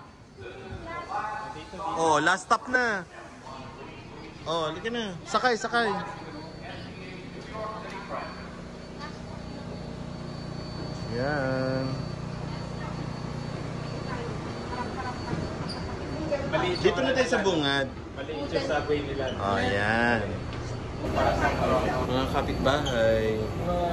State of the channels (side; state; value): both; identical; correlation 1.00